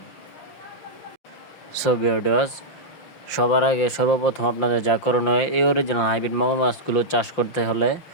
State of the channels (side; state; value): right; late; 5.8 ms